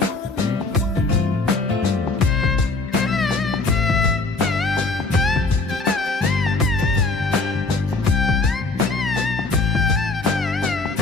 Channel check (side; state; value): right; quieter; 3.6 dB